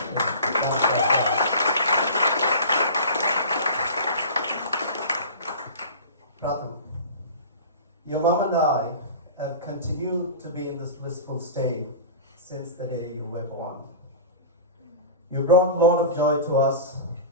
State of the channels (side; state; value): both; inverted; correlation -0.35